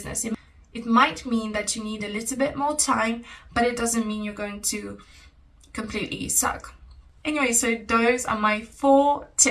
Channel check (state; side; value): identical; both; correlation 1.00